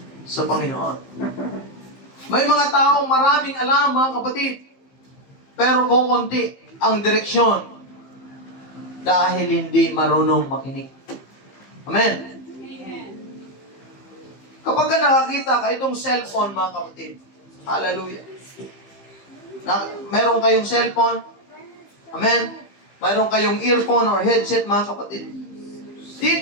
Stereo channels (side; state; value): right; late; 15 ms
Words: sa Panginoon. May mga taong maraming alam, mga kapatid, pero kukunti ang direksyon dahil hindi marunong makinig. Amen. Kapag ka nakakita ka itong cellphone, mga kapatid, hallelujah. Meron kayong cellphone, amen. Meron kayong earphone or headset, mga kapatid.